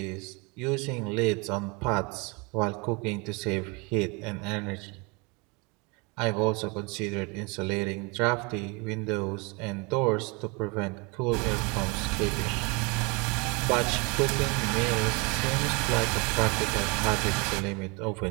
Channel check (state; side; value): quieter; left; 29.3 dB